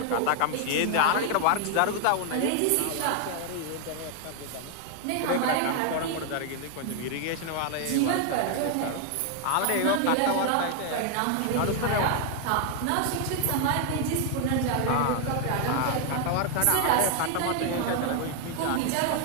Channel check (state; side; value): different; both; correlation 0.00